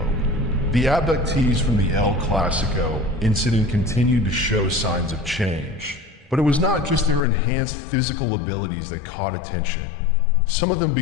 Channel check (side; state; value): right; drops out; at 7.2 s